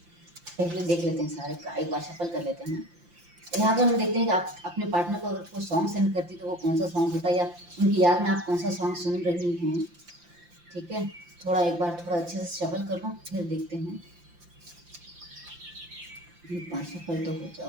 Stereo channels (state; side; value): late; left; 5.8 ms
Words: पहले देख लेते हैं सारे का, एक बार शफल कर लेते हैं। यहाँ पर हम देखते हैं कि आप अपने पार्टनर को अगर कोई सॉन्ग सेंड करती तो वो कौन सा सॉन्ग होता है, या उनकी याद में आप कौन सा सॉन्ग सुन रही हैं। ठीक है, थोड़ा एक बार थोड़ा अच्छे से शफल कर लो, फिर देखते हैं। पाँच शफल तो हो